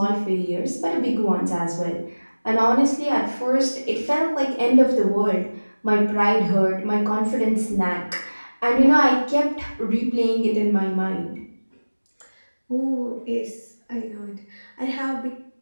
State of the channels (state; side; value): inverted; both; correlation -1.00